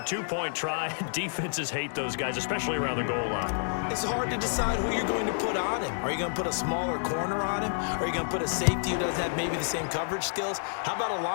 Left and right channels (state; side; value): silent; right; digital silence